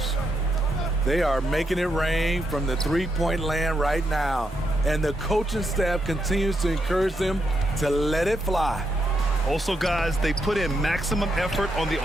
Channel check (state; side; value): normal; both; correlation 0.81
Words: They are making it rain from the three-point land right now, and the coaching staff continues to encourage them to let it fly. Also, guys, they put in maximum effort on the